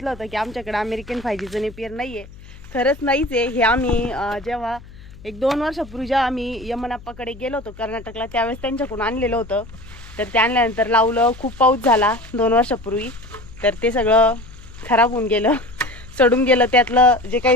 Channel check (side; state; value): left; noise; hum, 19 dB below the sound